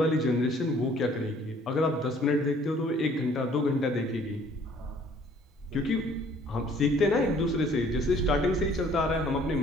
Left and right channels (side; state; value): both; normal; correlation 0.57